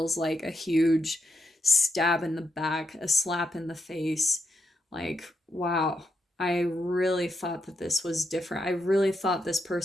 like a huge stab in the back, a slap in the face. Like, wow, I really thought that this was different. I really thought this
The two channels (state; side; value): normal; both; correlation 0.82